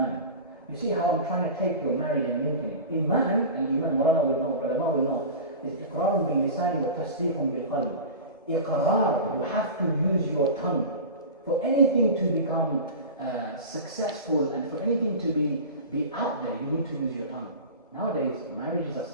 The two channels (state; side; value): inverted; both; correlation -0.31